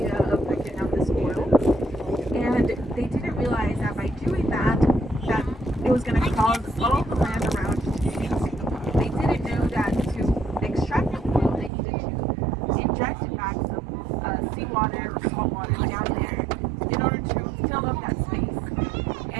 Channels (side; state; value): left; drops out; at 11.7 s